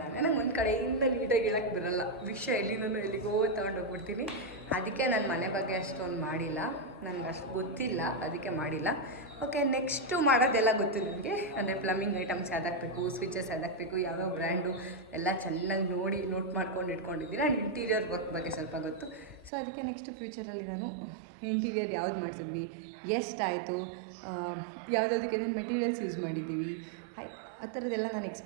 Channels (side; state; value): left; drops out; at 19.5 s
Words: ನಂಗೆ ಒಂದು ಕಡೆಯಿಂದ ನೀಟಾಗಿ ಹೇಳೋಕ್ಕೆ ಬರೋಲ್ಲ. ವಿಷಯ ಎಲ್ಲಿಗೋ ತೊಗೊಂಡೋಗ್ಬಿಡ್ತೀನಿ. ಅದಕ್ಕೆ ನಾನು ಮನೆ ಬಗ್ಗೆ ಅಷ್ಟೊಂದು ಮಾಡಿಲ್ಲ, ನನಗೆ ಅಷ್ಟು ಗೊತ್ತಿಲ್ಲ, ಅದಕ್ಕೆ ಮಾಡಿಲ್ಲ. ಓಕೆ, ನೆಕ್ಸ್ಟು ಮಾಡೋದೆಲ್ಲ ಗೊತ್ತು ನನಗೆ. ಅಂದರೆ ಪ್ಲಂಬಿಂಗ್ ಐಟಮ್ಸ್ ಯಾವ್ದಾಕಬೇಕು, ಸ್ವಿಚಸ್ ಯಾವ್ದಾಕಬೇಕು, ಯಾವ್ಯಾವ ಬ್ರ್ಯಾಂಡು ಎಲ್ಲ ಚೆನ್ನಾಗಿ ನೋಟ್ ಮಾಡ್ಕೊಂಡು ಇಟ್ಕೊಂಡಿದ್ದೀನಿ. ಆ್ಯಂಡ್ ಇಂಟೀರಿಯರ್ ವರ್ಕ್ ಬಗ್ಗೆ ಸ್ವಲ್ಪ ಗೊತ್ತು. ಸೊ ಅದಕ್ಕೆ ನೆಕ್ಸ್ಟ್ ಫ್ಯೂಚರಲ್ಲಿ ನಾನು ಇಂಟೀರಿಯರ್ ಯಾವ್ದು ಮಾಡಿಸಿದ್ವಿ, ಎಷ್ಟಾಯಿತು, ಯಾವುದಕ್ಕೆ ಏನೇನು ಮೆಟೀರಿಯಲ್ಸ್ ಯೂಸ್ ಮಾಡಿದ್ದೀವಿ, ಆ ಥರದ್ದೆಲ್ಲ ನಾನು